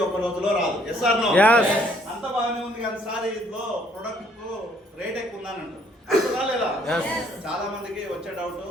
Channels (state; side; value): normal; both; correlation 0.65